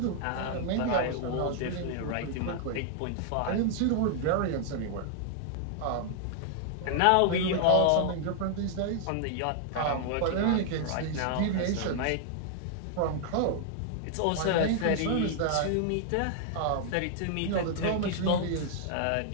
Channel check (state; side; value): different; both; correlation -0.01